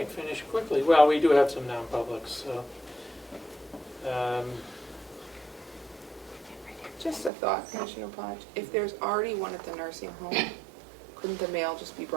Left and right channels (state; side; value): drops out; left; at 7.3 s